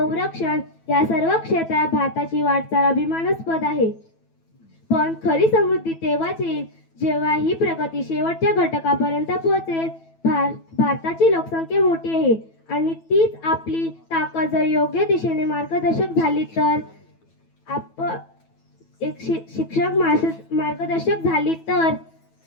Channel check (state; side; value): late; right; 9.1 ms